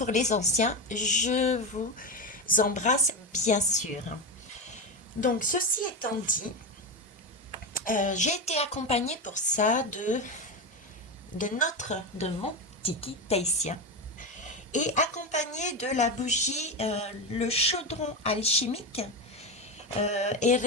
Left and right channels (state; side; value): normal; both; correlation 0.16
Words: les anciens, je vous embrasse bien sûr. Donc ceci étant dit, j'ai été accompagnée pour ça de mon tiki tahitien et accompagnée de la bougie, le chaudron alchimique